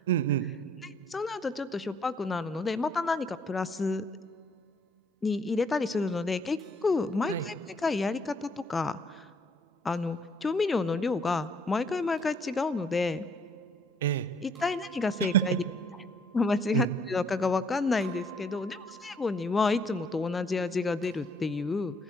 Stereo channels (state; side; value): normal; both; correlation 0.65